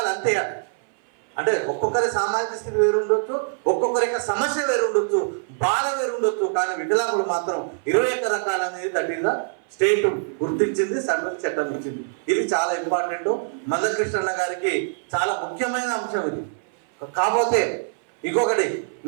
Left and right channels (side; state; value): left; silent; 58 dB below the other